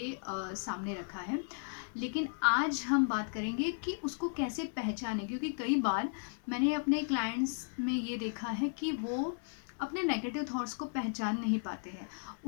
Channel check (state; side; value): silent; right; 54 dB below the other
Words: सामने रखा है। लेकिन आज हम बात करेंगे कि उसको कैसे पहचानें, क्योंकि कई बार मैंने अपने क्लाइंट्स में ये देखा है कि वो अपने नेगेटिव थॉट्स को पहचान नहीं पाते हैं।